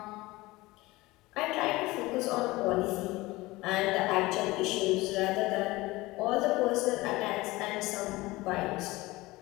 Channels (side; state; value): right; quieter; 20.3 dB